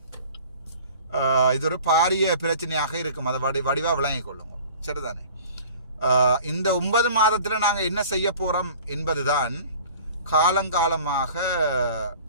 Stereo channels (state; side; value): inverted; both; correlation -0.45